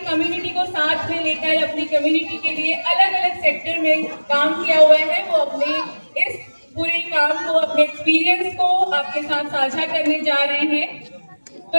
कम्युनिटी को साथ में लेकर अपनी कम्युनिटी के लिए अलग अलग सेक्टर में काम किया हुआ है, वो अपने इस पूरे काम को, अपने एक्सपीरियंस को आपके साथ साझा करने जा रहे हैं। तो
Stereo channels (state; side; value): inverted; both; correlation -1.00